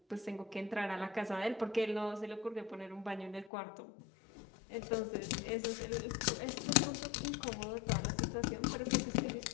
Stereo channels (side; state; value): right; drops out; at 3.5 s